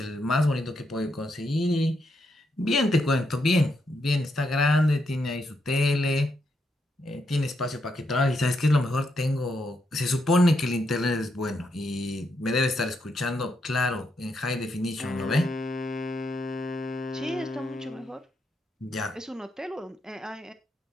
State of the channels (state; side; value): normal; both; correlation 0.80